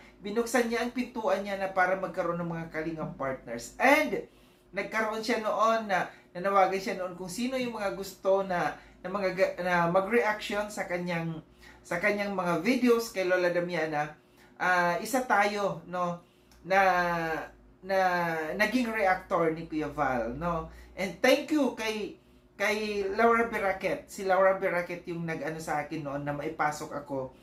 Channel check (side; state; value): both; identical; correlation 1.00